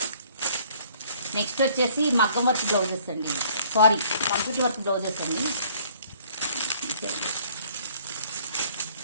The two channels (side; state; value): both; inverted; correlation -0.58